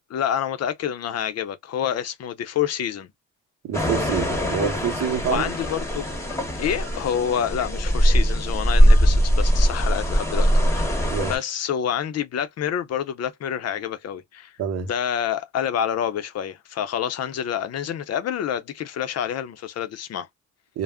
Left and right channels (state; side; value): normal; both; correlation 0.58